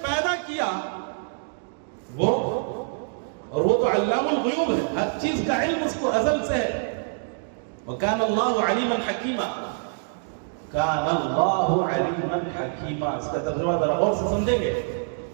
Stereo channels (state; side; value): silent; left; digital silence